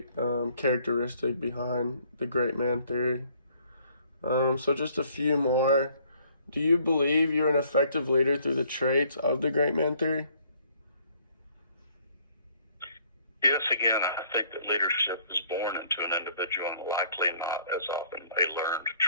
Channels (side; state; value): both; inverted; correlation -0.62